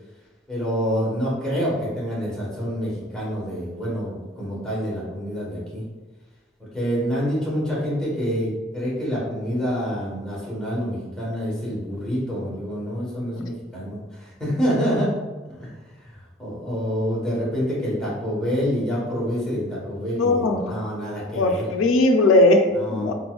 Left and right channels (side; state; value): both; normal; correlation 0.43